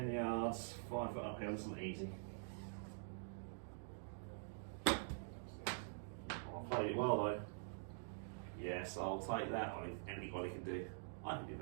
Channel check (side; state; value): left; silent; digital silence